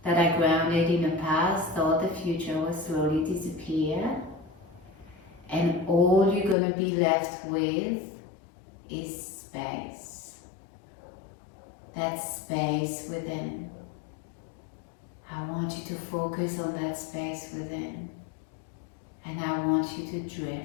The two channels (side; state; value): right; drops out; at 6.6 s